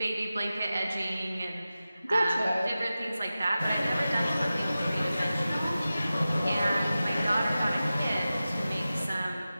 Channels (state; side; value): inverted; both; correlation -0.95